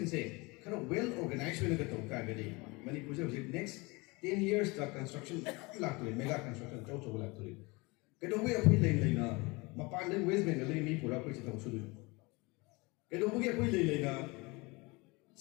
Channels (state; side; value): quieter; right; 25.7 dB